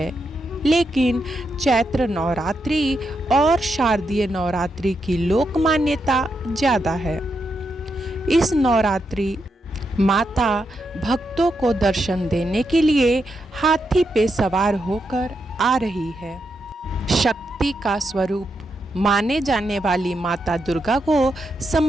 लेकिन चैत्र नवरात्रि और शारदीय नवरात्रि की लोक मान्यता ज़्यादा है। इस नवरात्रि माता भक्तों को दर्शन देने के लिए हाथी पे सवार होकर आ रही है। शक्ति का स्वरूप माने जाने वाली माता दुर्गा को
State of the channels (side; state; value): both; normal; correlation 0.83